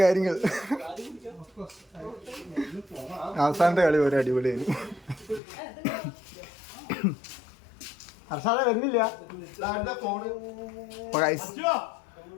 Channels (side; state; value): right; drops out; at 5.4 s